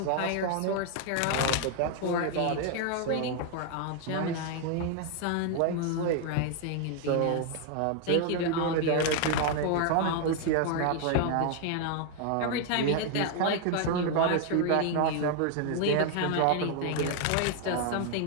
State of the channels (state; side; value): different; both; correlation 0.00